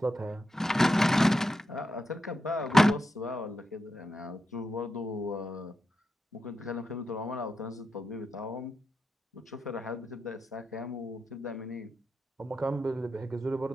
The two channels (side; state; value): both; normal; correlation 0.87